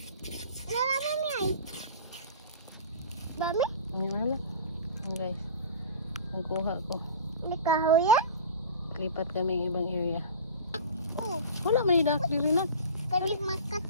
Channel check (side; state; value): both; inverted; correlation -0.36